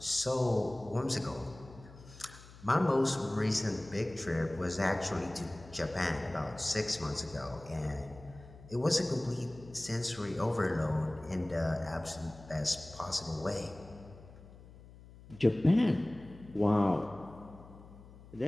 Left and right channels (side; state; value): left; noise; hum, 19 dB below the sound